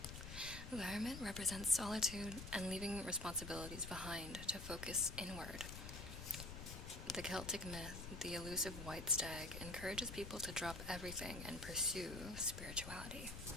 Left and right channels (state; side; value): noise; left; rumble, 9 dB below the sound